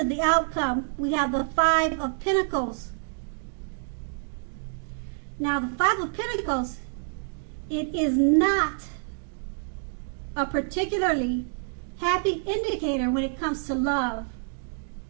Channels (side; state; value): left; silent; 60 dB below the other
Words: the outcome. We have the Five of Pentacles. Now the Five of Pentacles, it is not a particularly happy indicator when it comes to love,